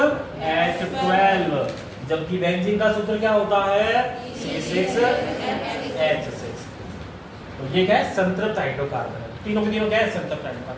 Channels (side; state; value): both; identical; correlation 1.00